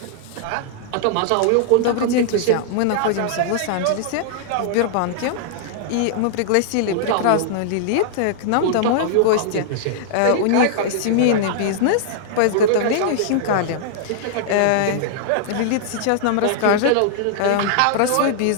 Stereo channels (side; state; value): both; different; correlation -0.01